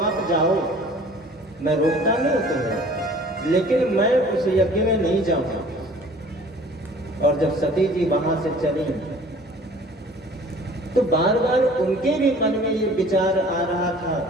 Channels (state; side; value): normal; both; correlation 0.49